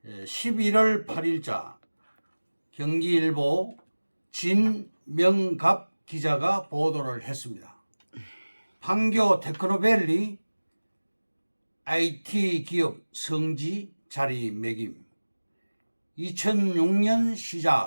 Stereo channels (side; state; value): both; inverted; correlation -1.00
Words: 11월 8일자 경기일보 진명갑 기자가 보도를 했습니다. 판교 테크노밸리 IT 기업 성지 자리매김. 2006년